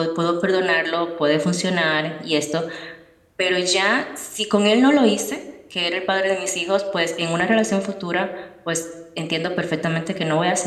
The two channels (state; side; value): identical; both; correlation 1.00